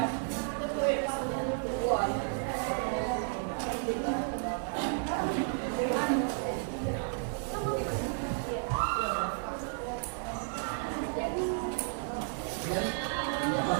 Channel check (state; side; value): silent; left; digital silence